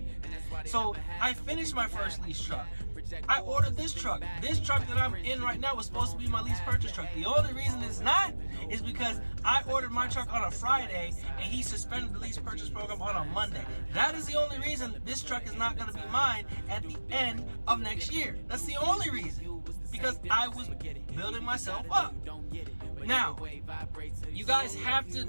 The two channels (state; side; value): inverted; both; correlation -1.00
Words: So I finished my first lease truck. I ordered this truck. This truck that I'm in right now was supposed to be my lease purchase truck. The only reason it's not is because I ordered my truck on a Friday and he suspended the lease purchase program on a Monday. That is the only reason this truck is not going to be mine at the end of next year. That's the only reason. Because I was building myself up. Now, you guys have to